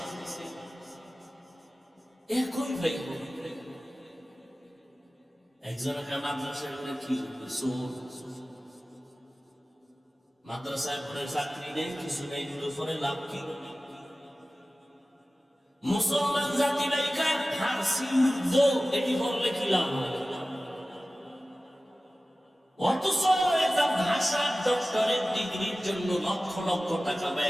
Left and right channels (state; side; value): normal; both; correlation 0.96